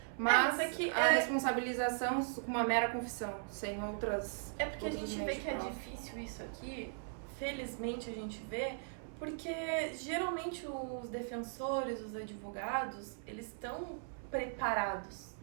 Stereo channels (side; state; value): left; silent; 52 dB below the other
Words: Mas a responsabilização com uma mera confissão, sem outras... É porque a gente vê que é difícil isso aqui, felizmente a gente vê, porque geralmente os defensores, os advogados, eles estão preparados.